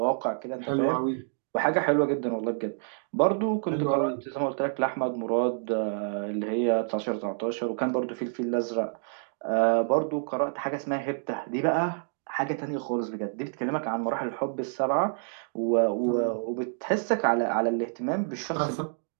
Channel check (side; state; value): left; silent; digital silence